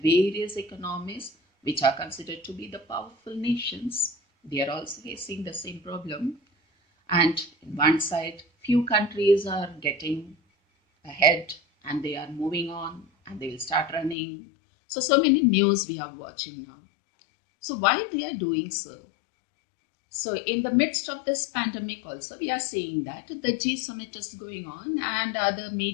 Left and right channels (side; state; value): right; drops out; at 14.2 s